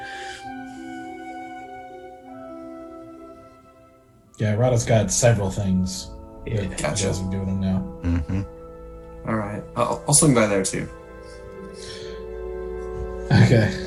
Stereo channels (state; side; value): identical; both; correlation 1.00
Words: Yeah, Rada's got several things. Yeah, that gotcha. he doesn't do with them now. Mm-hmm. All right. I'll swing by there too. Okay.